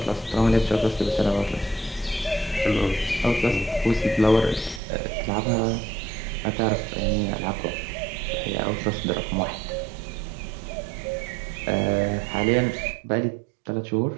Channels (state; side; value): drops out; left; at 4.8 s